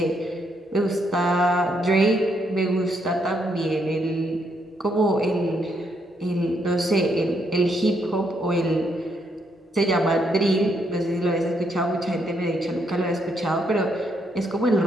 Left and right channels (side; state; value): both; normal; correlation 0.75